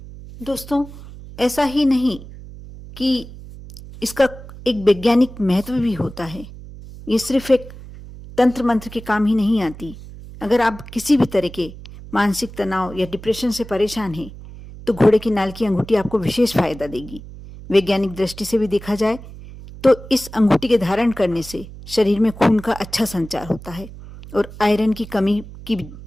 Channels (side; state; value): right; noise; hum, 15 dB below the sound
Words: दोस्तों, ऐसा ही नहीं कि इसका एक वैज्ञानिक महत्व भी होता है। ये सिर्फ एक तंत्र मंत्र के काम ही नहीं आती। अगर आप किसी भी तरह के मानसिक तनाव या डिप्रेशन से परेशान हैं तो घोड़े की नाल की अंगूठी आपको विशेष फायदा देगी। वैज्ञानिक दृष्टि से भी देखा जाए तो इस अंगूठी के धारण करने से शरीर में खून का अच्छा संचार होता है और आयरन की कमी की